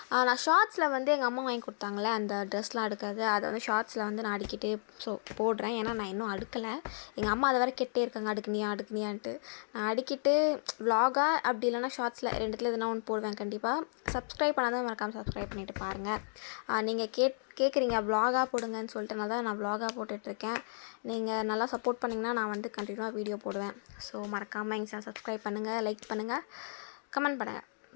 நான் ஷார்ட்ஸில் வந்து எங்கள் அம்மா வாங்கி கொடுத்தாங்களே அந்த ட்ரெஸ்லாம் அடுக்கிறது, அதை வந்து ஷார்ட்ஸில் வந்து நான் அடிக்கிட்டே போடுறேன். ஏன்னா நான் இன்னும் அடுக்கலை. எங்கள் அம்மா அதை வேறு கேட்டே இருக்காங்க, அடுக்குனியான்ட்டு. நான் அடிக்கிட்டு vlog-ஆ அப்படி இல்லைனா ஷார்ட்ஸில் ரெண்டுத்தில் எதுனா ஒன்று போடுவேன் கண்டிப்பாக. சப்ஸ்கிரைப் பண்ணாதான் மறக்காமல் சப்ஸ்கிரைப் பண்ணிவிட்டு பாருங்கள். நீங்கள் கேட்குறீங்க vlog-ஆ போடுங்கன்னு சொல்லிட்டு நான் vlog-ஆ போட்டுட்ருக்கேன். நீங்கள் நல்லா சப்போர்ட் பண்ணிங்கன்னா நான் வந்து கண்டினியூவாக வீடியோ போடுவேன். ஸோ மறக்காமல் எங்கள் சேனல் சப்ஸ்கிரைப் பண்ணுங்கள், லைக் பண்ணுங்கள், கமெண்ட் பண்ணுங்கள்.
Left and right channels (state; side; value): silent; right; digital silence